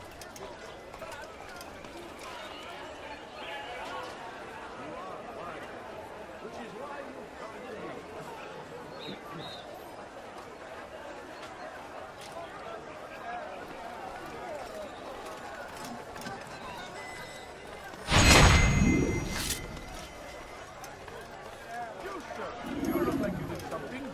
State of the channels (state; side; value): identical; both; correlation 1.00